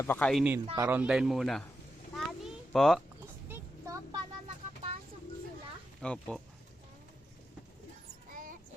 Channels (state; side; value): normal; both; correlation 0.87